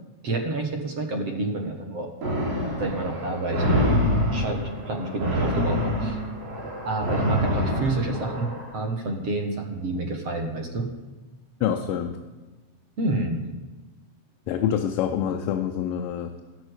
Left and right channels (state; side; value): late; left; 7.7 ms